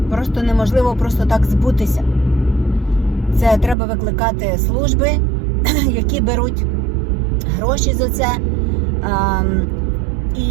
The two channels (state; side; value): drops out; left; at 3.8 s